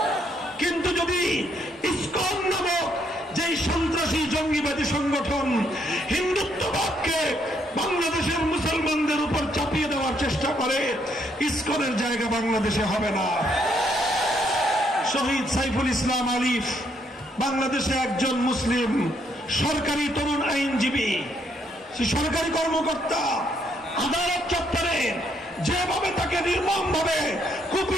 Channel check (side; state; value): both; normal; correlation 0.72